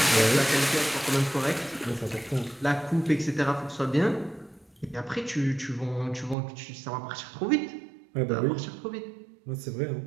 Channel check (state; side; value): drops out; left; at 6.4 s